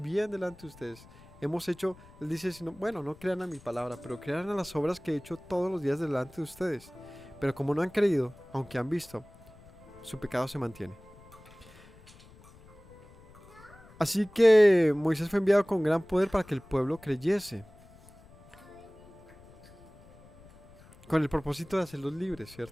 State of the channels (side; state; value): left; noise; rumble, 23 dB below the sound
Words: delante de ustedes. Hemos hecho, él dice, bueno, no crean a mi palabra, pero crean a las obras que he hecho todos los días delante de ustedes. Pero como no han creído, aunque han visto, su pecado se mantiene. Así que Moisés fue enviado con gran poder para que el pueblo creyese. Con el propósito de hacerlos libres,